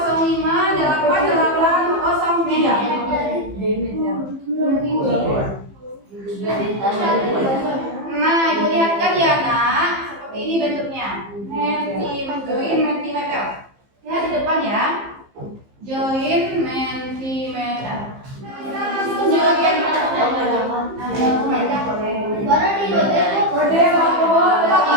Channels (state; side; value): late; left; 15 ms